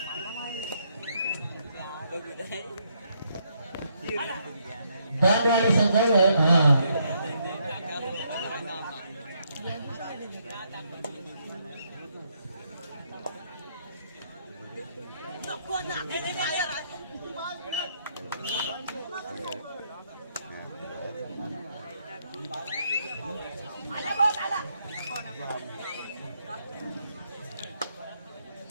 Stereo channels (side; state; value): both; inverted; correlation -0.74